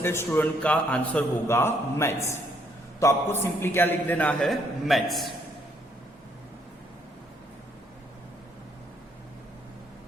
स्टूडेंट का आंसर होगा मैथ्स। तो आपको सिंपली क्या लिख देना है, maths.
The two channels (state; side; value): normal; both; correlation 0.70